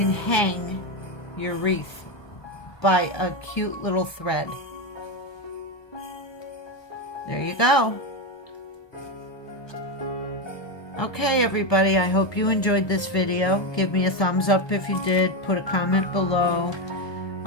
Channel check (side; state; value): right; late; 1.2 ms